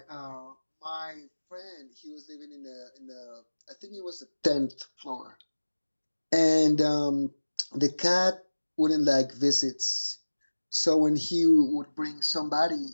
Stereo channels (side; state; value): both; inverted; correlation -1.00